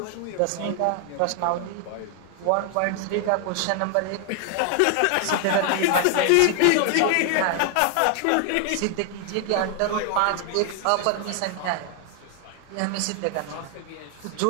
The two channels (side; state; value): both; different; correlation 0.00